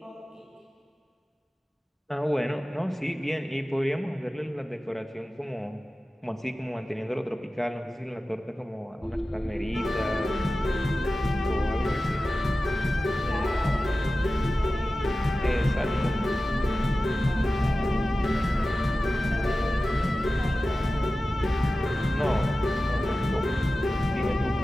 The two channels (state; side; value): normal; both; correlation 0.95